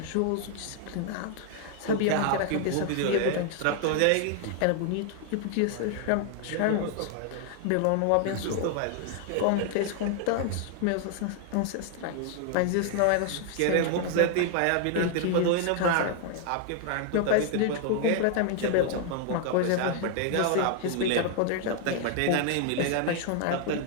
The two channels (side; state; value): both; different; correlation 0.00